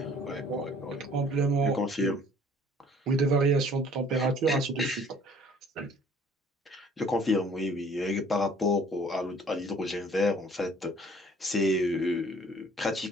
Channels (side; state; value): both; normal; correlation 0.55